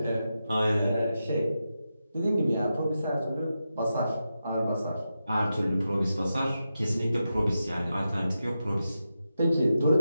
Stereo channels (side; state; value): both; inverted; correlation -0.89